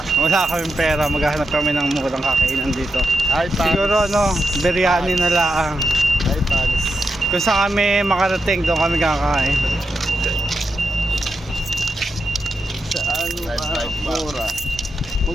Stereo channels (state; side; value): normal; both; correlation 0.87